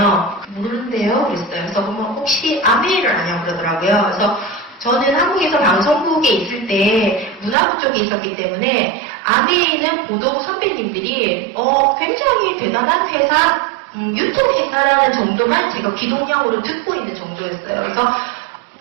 모르는데요? 그랬어요. 그래서 그러면 혹시 아메이를 아냐고 그러더라고요. 그래서 저는 한국에서 방송국에 있을 때 문화부 쪽에 있었기 때문에 아메이는 보도 선배님들이 굉장히 대단한 회사, 유통회사라는 정도만 제가 귀동냥으로 듣고 있는 정도였어요. 그래서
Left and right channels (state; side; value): drops out; left; at 7.6 s